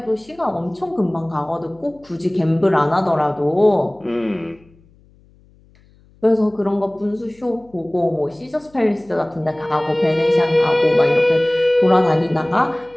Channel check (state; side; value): noise; left; hum, 30 dB below the sound